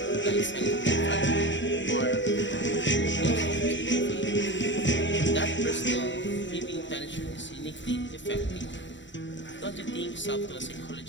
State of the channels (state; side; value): late; right; 0.54 ms